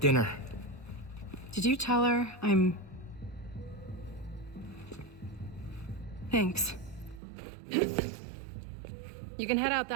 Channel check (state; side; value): drops out; left; at 7.2 s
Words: Did you tell her I'm... Thanks. You can head out